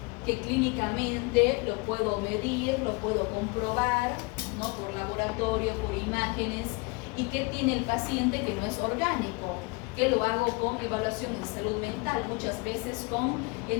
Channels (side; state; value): right; quieter; 27.4 dB